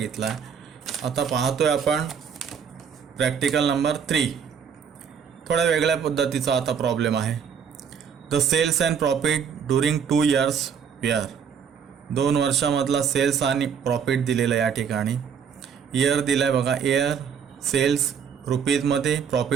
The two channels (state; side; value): quieter; left; 7.3 dB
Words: आहे. आता पाहतोय आपण प्रॅक्टिकल नंबर 3. थोड्या वेगळ्या पद्धतीचा आता प्रॉब्लेम आहे. The sales and profit during 2 years were. 2 वर्षामधला सेल्स आणि प्रॉफिट दिलेला या ठिकाणी. इयर दिला आहे बघा. इयर सेल्स रुपीजमध्ये,